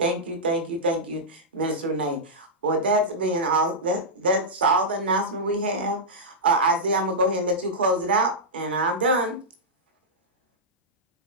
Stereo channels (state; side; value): normal; both; correlation -0.10